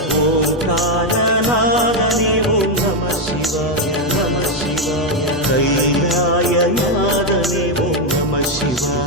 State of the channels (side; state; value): both; normal; correlation 0.04